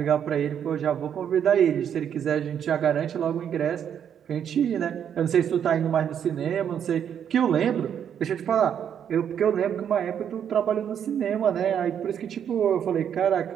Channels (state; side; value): quieter; left; 8.7 dB